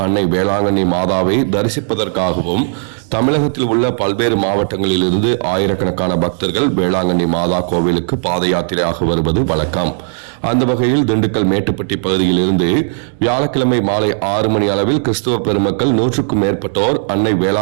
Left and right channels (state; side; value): silent; left; digital silence